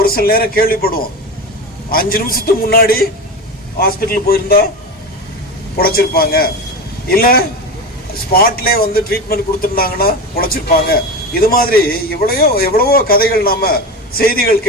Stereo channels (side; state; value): both; normal; correlation 0.24